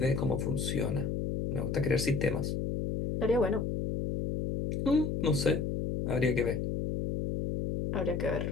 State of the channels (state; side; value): noise; left; hum, 1 dB below the sound